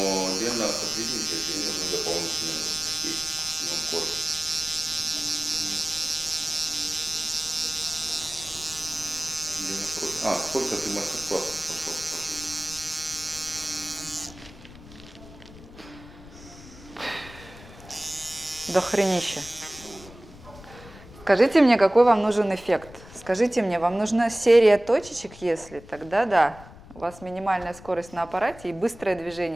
Лена сотрудничает, и нужны дополнительные Сколько ты мастер-классов прошел? До хренища. Скажите мне, какой вам нужен эффект? Скажите мне, вам нужна серия точечек, если? Тогда да. У вас минимальная скорость на аппарате и быстрое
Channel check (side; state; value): left; noise; rumble, 18 dB below the sound